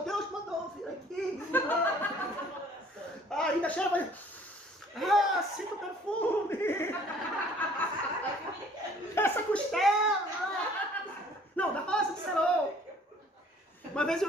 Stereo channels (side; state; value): both; normal; correlation 0.55